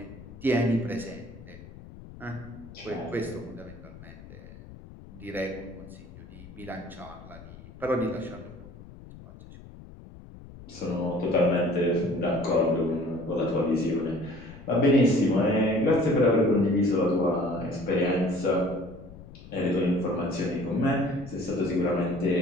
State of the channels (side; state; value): left; noise; rumble, 17 dB below the sound